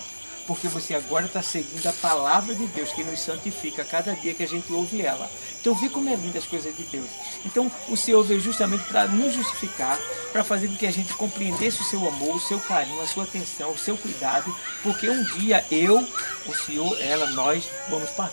Porque você agora está seguindo a palavra de Deus, que nos santifica a cada dia que a gente ouve ela. Então, vê como é linda as coisas de Deus. Então, o Senhor veio justamente para nos justificar, para fazer com que a gente compreendesse o seu amor, o seu carinho, a sua atenção, o seu cuidado, porque um dia eu, o Senhor, ela, nós vamos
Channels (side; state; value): both; inverted; correlation -1.00